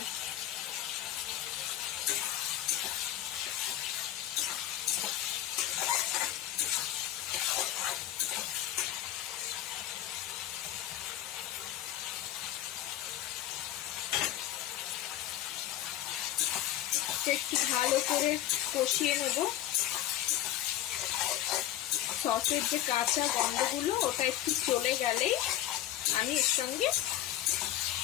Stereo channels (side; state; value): right; quieter; 13.0 dB